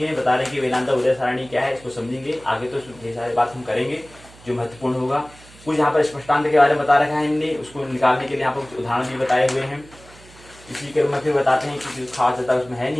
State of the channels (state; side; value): noise; right; hum, 23 dB below the sound